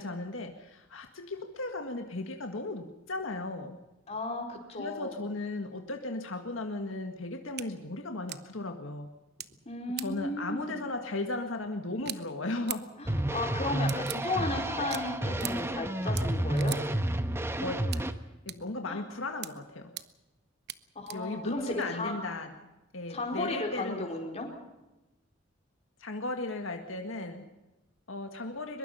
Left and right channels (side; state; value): both; normal; correlation 0.40